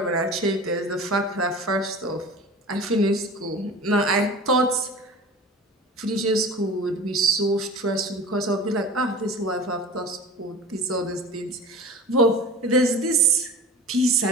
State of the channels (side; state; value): both; normal; correlation 0.38